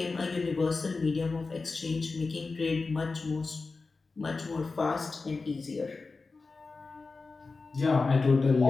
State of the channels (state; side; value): quieter; right; 4.0 dB